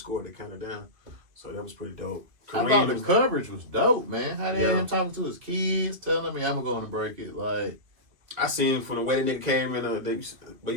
they counted down. So that was pretty dope. I thought the coverage was dope, man. How they had Yeah. him talking to his kids, telling me I'm going to break it. Like, I seen from the way the nigga came in, but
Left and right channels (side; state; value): left; late; 2.5 ms